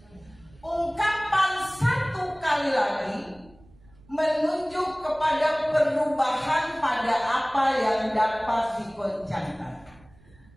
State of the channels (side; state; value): right; noise; rumble, 27 dB below the sound